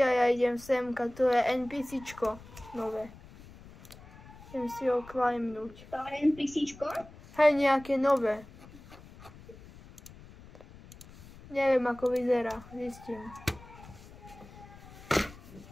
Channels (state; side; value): noise; left; rumble, 19 dB below the sound